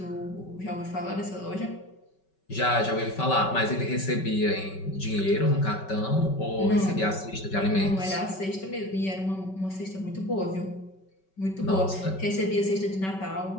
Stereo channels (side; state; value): right; late; 5.3 ms